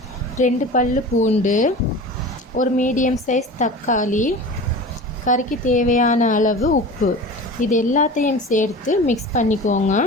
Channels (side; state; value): both; normal; correlation 0.35